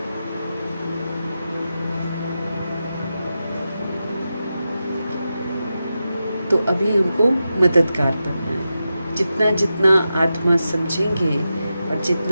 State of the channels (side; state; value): both; inverted; correlation -0.90